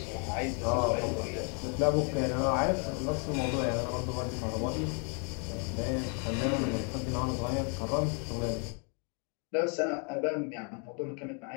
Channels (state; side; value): quieter; right; 38.3 dB